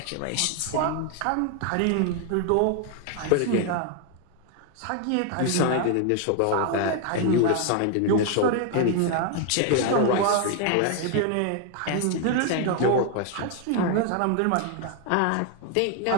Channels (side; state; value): both; different; correlation 0.00